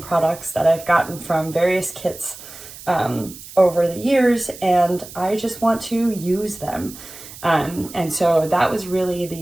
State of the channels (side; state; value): right; noise; hiss, 16 dB below the sound